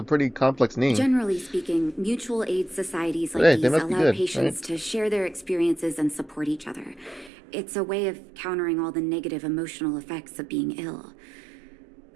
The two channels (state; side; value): drops out; left; at 7.3 s